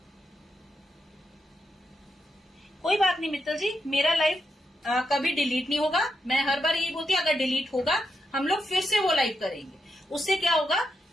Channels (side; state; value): both; normal; correlation 0.84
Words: कोई बात नहीं मित्तल जी, मेरा लाइव कभी डिलीट नहीं होगा। मैं हर बार यही बोलती हूँ, अगर डिलीट होगा हम लोग फिर से वो लाइव करेंगे। उससे क्या होगा